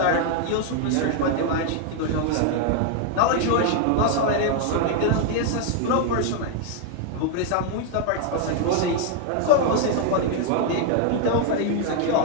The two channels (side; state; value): both; different; correlation 0.00